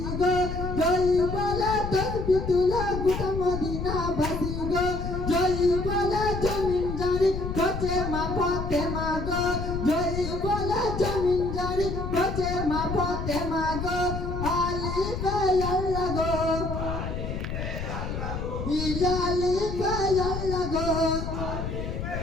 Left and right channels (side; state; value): left; noise; rumble, 4 dB below the sound